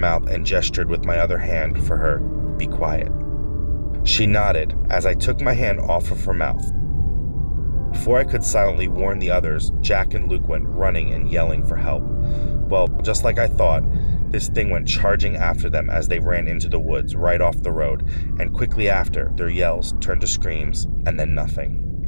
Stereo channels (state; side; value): inverted; both; correlation -1.00